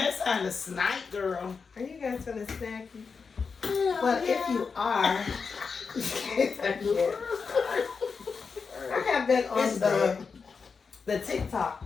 it's time to snipe, girl. Are you guys gonna snacky? But if you are, I have been on the TikTok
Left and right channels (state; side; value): quieter; right; 5.3 dB